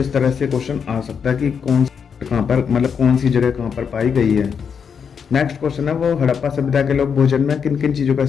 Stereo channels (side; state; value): right; quieter; 6.8 dB